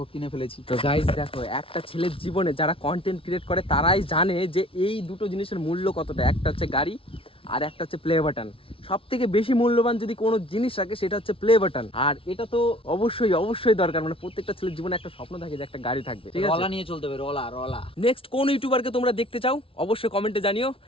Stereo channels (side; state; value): right; late; 0.26 ms